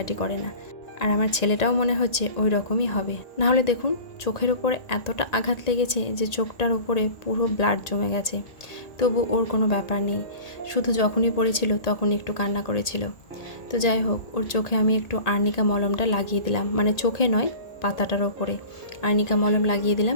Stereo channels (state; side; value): late; right; 1.8 ms